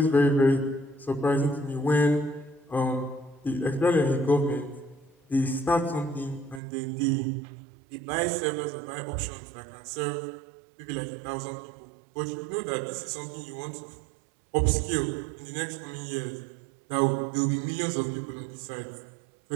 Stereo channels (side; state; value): left; drops out; at 6.6 s